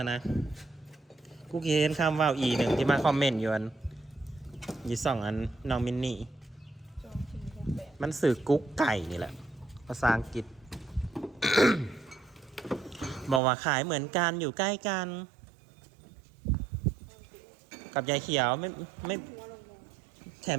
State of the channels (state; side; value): drops out; left; at 13.4 s